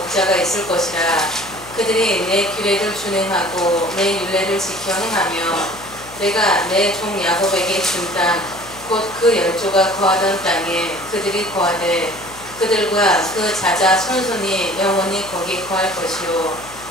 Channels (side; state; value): left; noise; hum, 20 dB below the sound